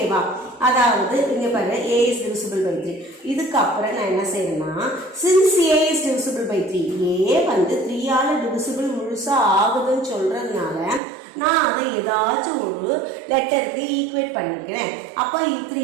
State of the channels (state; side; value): drops out; left; at 11.0 s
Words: அதாவது இங்க பாருங்க, a is divisible by 3. இதுக்கு அப்புறம் நான் என்ன செய்யணும்னா, since a is divisible by 3, a வந்து 3 ஆல divisible முழுசா ஆகுதுன்னு சொல்றதுனால நான் அதை ஏதாச்சும் ஒரு லெட்டருக்கு ஈக்குவேட் பண்ணிக்கிறேன். அப்போ